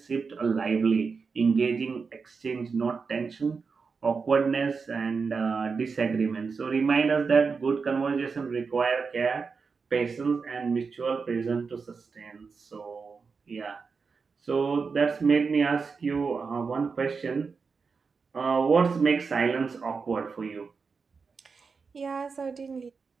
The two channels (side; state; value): left; quieter; 5.1 dB